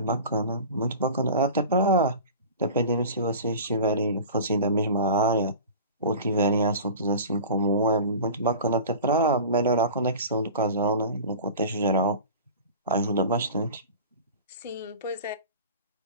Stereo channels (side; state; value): both; inverted; correlation -0.36